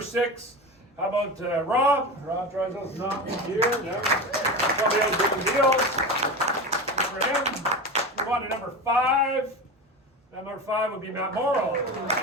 6. How about Rob? Rob Drysdale's not here. No. Somebody else doing deals. Good for him. Move on to number 5. Number 5 would be Matt Morrow.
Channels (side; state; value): both; normal; correlation 0.25